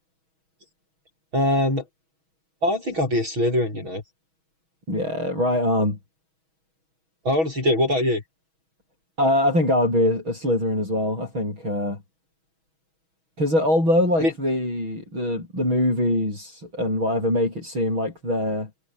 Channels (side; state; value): left; late; 6.2 ms